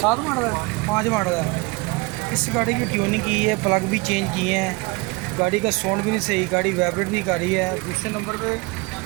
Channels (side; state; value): left; quieter; 26.1 dB